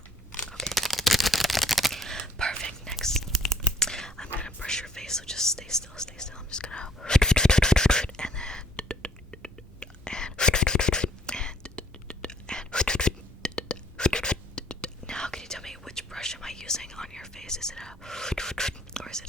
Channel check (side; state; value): both; normal; correlation 0.60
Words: Okay. Perfect. Next, I'm gonna brush your face. So just stay still. Stay still. I'm just gonna. And then. Now, can you tell me which brush am I using on your face? Is it a or is it